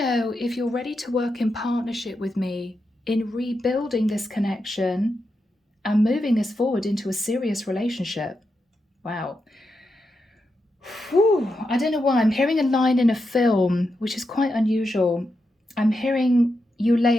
if you're ready to work in partnership with me in rebuilding this connection and moving this forward into a serious relationship. Wow. Whew. I don't know why. I'm hearing a line in a film, which is quite unusual. I'm hearing you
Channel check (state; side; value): normal; both; correlation 0.86